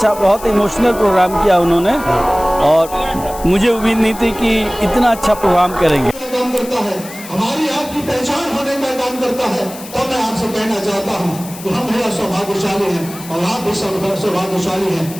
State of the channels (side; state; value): left; noise; hiss, 15 dB below the sound